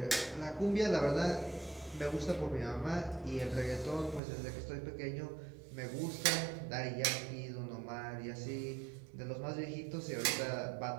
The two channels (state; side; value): drops out; left; at 4.2 s